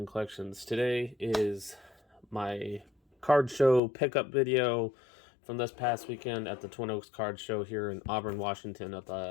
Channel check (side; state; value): right; drops out; at 3.8 s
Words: Collections. Today is my card show pickup video from this past weekend at the Twin Oaks Card Show here in Auburn, Washington, at